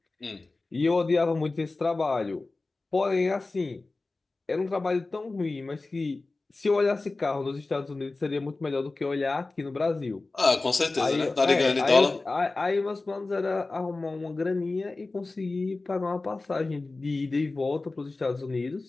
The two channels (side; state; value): right; quieter; 3.4 dB